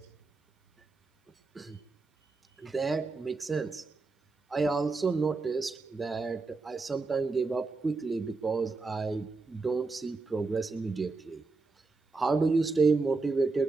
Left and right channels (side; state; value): left; quieter; 3.8 dB